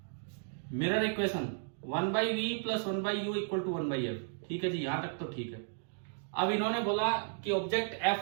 Mirror equation 1/v + 1/u = 1/f। ठीक है जी, यहां तक तो ठीक है। अब इन्होंने बोला कि ऑब्जेक्ट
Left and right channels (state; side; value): silent; left; digital silence